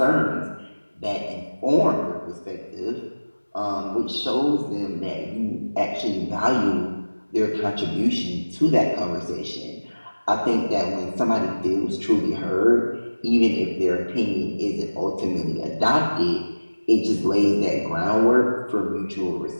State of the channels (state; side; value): inverted; both; correlation -1.00